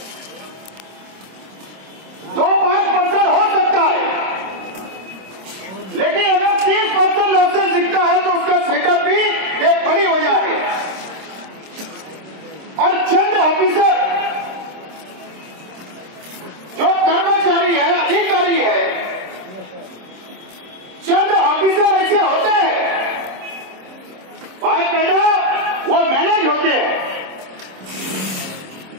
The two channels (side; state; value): left; late; 26 ms